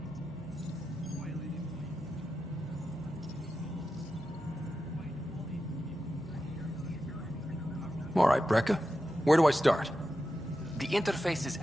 All right, Brecker. Where do I start? The interface is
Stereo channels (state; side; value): normal; both; correlation 0.90